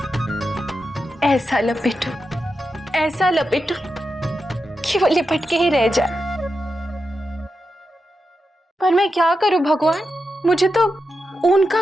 ऐसा लपेटूं कि वो लिपट के ही रह जाए। पर मैं क्या करूं भगवान, मुझे तो ऊन का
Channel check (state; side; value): normal; both; correlation 0.88